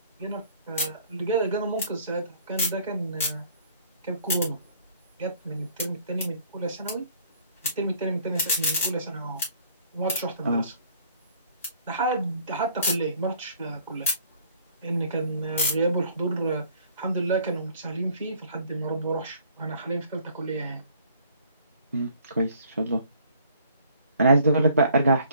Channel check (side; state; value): both; inverted; correlation -0.58